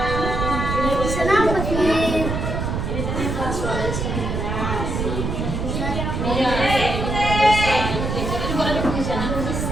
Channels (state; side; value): noise; right; rumble, 2 dB below the sound